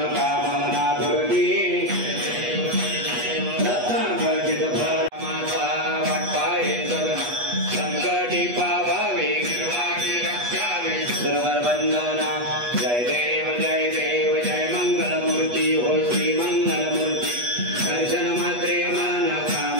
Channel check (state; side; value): late; left; 8.3 ms